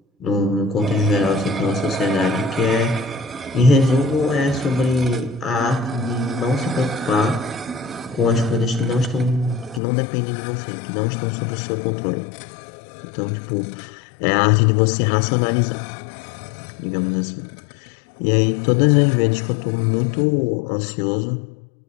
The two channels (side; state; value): right; drops out; at 9.8 s